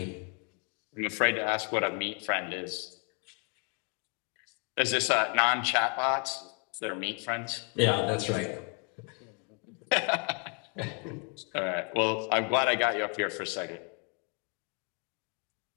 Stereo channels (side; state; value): right; quieter; 36.8 dB